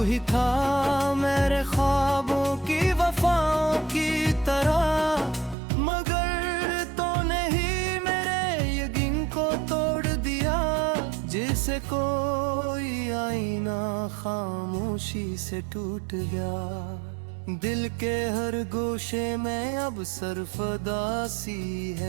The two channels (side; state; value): left; drops out; at 5.6 s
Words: ही था मेरे ख्वाबों की वफाओं की तरह, मगर तूने ही मेरे यकीन को तोड़ दिया, जिसे कोई आईना खामोशी से टूट गया। दिल के हर गोशे में अब सरफदासी